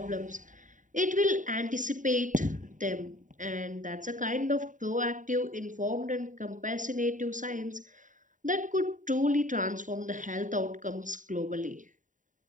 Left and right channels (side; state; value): left; late; 0.37 ms